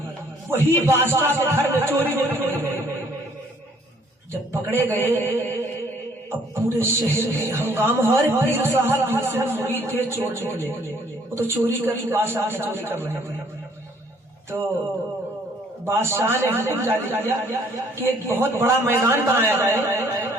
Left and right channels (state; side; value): normal; both; correlation 0.61